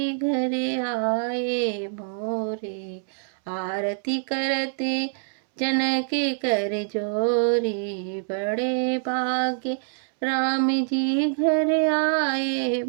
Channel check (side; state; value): left; silent; 62 dB below the other